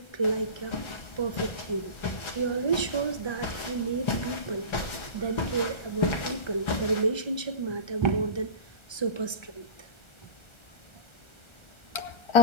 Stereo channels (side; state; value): right; late; 1.3 ms